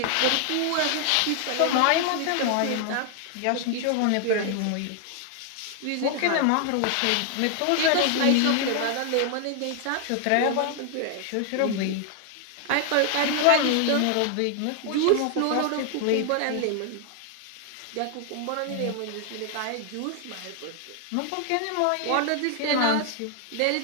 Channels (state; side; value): different; both; correlation 0.00